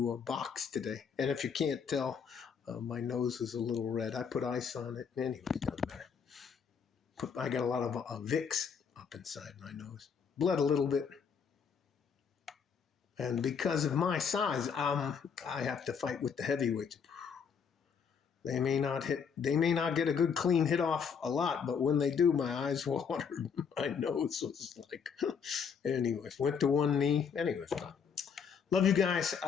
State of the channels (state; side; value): quieter; right; 6.5 dB